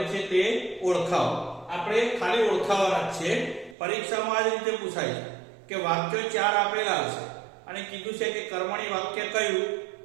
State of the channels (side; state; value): left; drops out; at 3.8 s